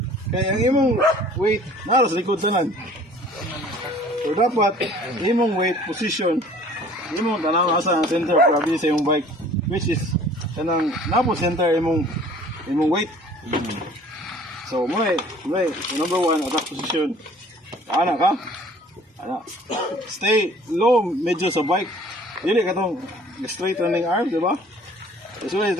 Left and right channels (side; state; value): both; normal; correlation 0.51